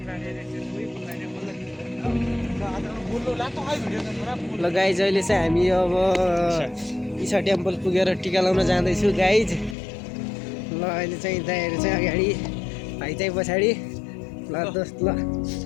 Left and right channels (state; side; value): drops out; right; at 9.8 s